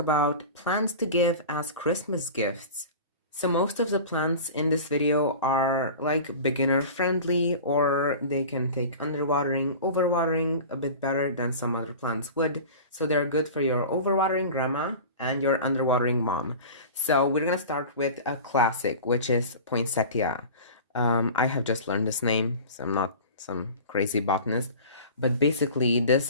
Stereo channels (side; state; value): both; inverted; correlation -0.36